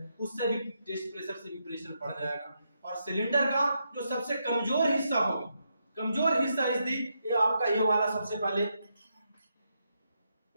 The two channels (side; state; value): both; inverted; correlation -0.81